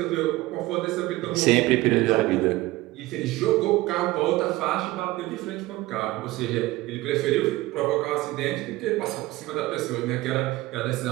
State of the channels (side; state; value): left; quieter; 18.6 dB